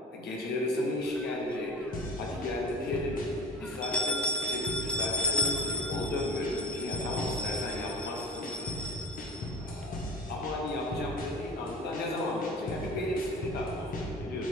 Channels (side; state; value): both; normal; correlation 0.33